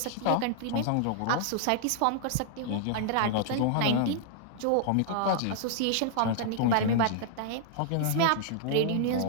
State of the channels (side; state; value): both; different; correlation -0.01